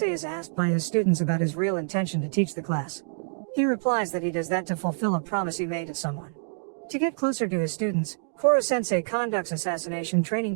is asked by his students about his real intention to teach the class. He replies that he does that to fulfill a promise he made to someone. To get closer to his students, Koro-sensei conducts assassination training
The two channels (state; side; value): silent; left; digital silence